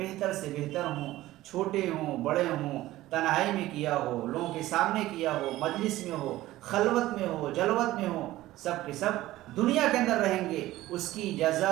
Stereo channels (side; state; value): left; quieter; 16.2 dB